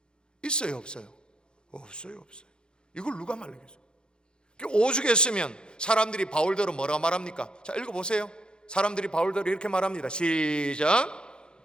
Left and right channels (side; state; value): right; late; 0.049 ms